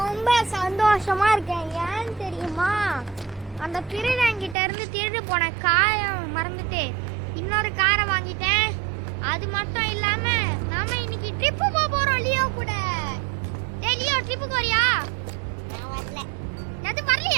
சந்தோஷமா இருக்கேன். ஏன்னு தெரியுமா? அந்த திருடங்கிட்ட இருந்து திருடு போன காரை மறந்துட்டு இன்னொரு காரை வாங்கிட்டேன். அது மட்டும் இல்லாம நாம இன்னைக்கு ட்ரிப்பு போறோம் லியோ கூட. டேய் லியோ, ட்ரிப்புக்கு வரியா? நான் வரல. எது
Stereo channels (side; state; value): left; drops out; at 4.5 s